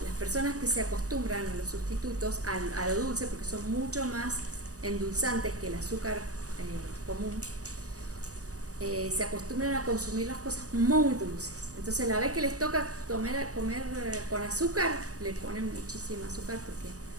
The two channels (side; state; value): left; late; 0.66 ms